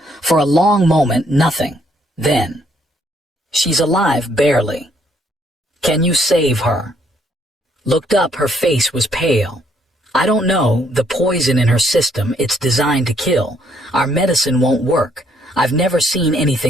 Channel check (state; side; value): normal; both; correlation 0.69